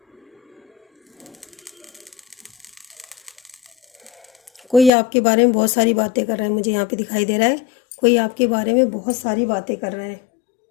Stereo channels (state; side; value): drops out; right; at 4.9 s